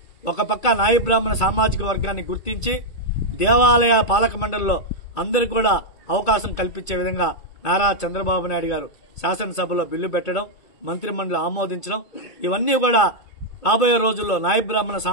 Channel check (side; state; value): right; late; 2.3 ms